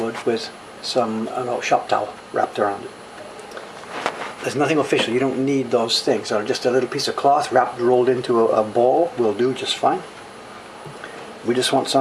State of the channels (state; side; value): identical; both; correlation 1.00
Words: with some shop towel wrapped around it. There's nothing official, you don't need those things. Just a little piece of cloth rolled into a ball will do just fine. We just want